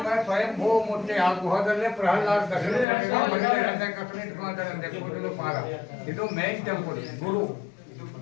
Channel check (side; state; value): right; drops out; at 2.9 s